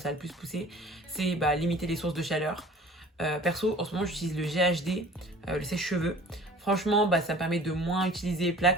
a le plus poussé. C'est limiter les sources de chaleur. Perso, en ce moment, j'utilise le GHD, le sèche-cheveux. Franchement, ça me permet de moins utiliser les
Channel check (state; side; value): normal; both; correlation 0.47